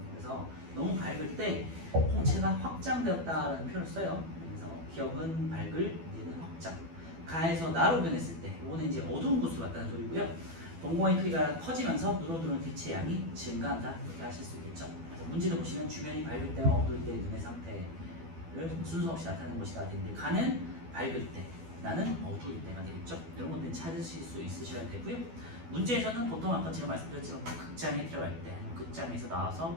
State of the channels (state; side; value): late; left; 12 ms